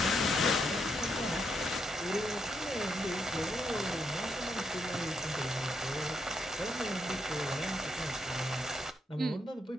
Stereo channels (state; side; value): normal; both; correlation 0.79